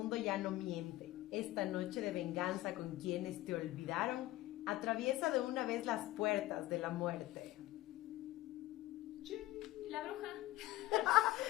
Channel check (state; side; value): quieter; right; 16.8 dB